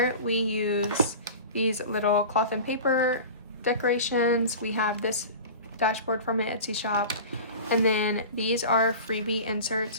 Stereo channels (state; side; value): inverted; both; correlation -0.35